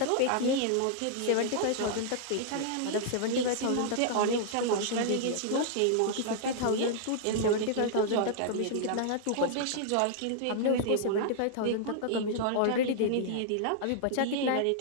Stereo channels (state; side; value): different; both; correlation -0.01